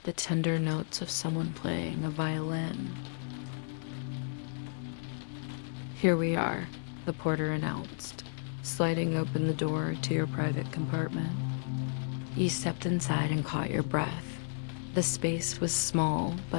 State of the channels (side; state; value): right; silent; digital silence